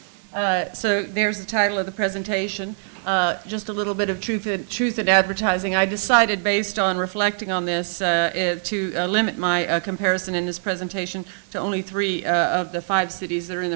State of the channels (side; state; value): left; silent; digital silence